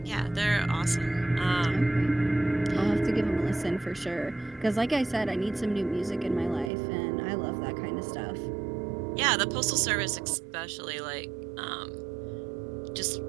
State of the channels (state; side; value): drops out; left; at 6.7 s